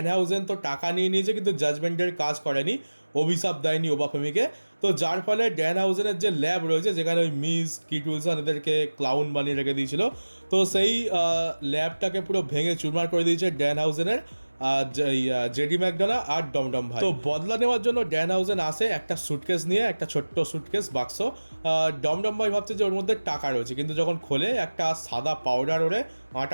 হাউজেন তো টাকা নিয়ে নিয়েছে, কিন্তু জাজমেন্টের কাজ করেনি, অভিশাপ দেয়নি ওবাফেমিকে। তো যার ফলে ড্যান হাউজেনের যে ল্যাব রয়েছে, যেখানে ওই মিস কিট উইলসন এদেরকে ক্লাউন বানিয়ে রেখে দিয়েছিল, তো সেই ল্যাবটাকে পুরো ভেঙে চুরমার করে দিয়েছে ড্যান হাউজেনের। জেডি ম্যাকডোনা আর ডমডম ভাই। তো বদলা নেওয়ার জন্য ড্যান হাউজেন আসে একটা সুটকেস নিয়ে, একটা ছোট্ট সুটকেস বাক্স। ডমডম ভাই ভাবছে যে ওর মধ্যে টাকা রয়েছে, কিন্তু যখন খোলে একটা সাদা পাউডার ওরে,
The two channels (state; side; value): inverted; both; correlation -1.00